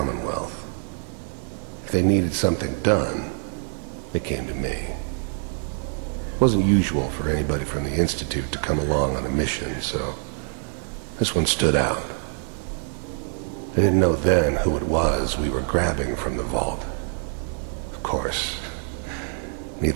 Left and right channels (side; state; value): left; silent; 62 dB below the other